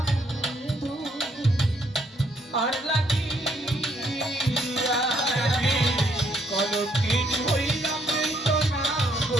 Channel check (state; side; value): normal; both; correlation 0.71